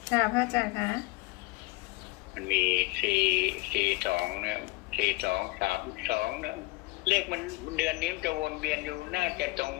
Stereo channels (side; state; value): right; quieter; 21.8 dB